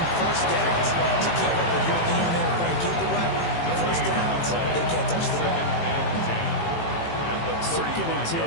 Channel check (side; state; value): right; late; 18 ms